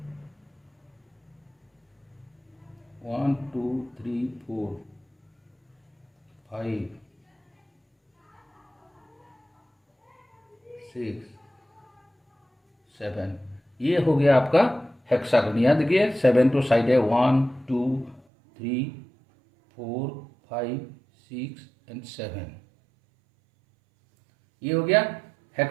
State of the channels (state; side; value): drops out; left; at 18.2 s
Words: 1 2 3 4 5 6 7, ये हो गया आपका हेक्सागन। याद देखिए 7 तो साइड है, 1 2 3 4 5 6 एंड 7, ये हो गया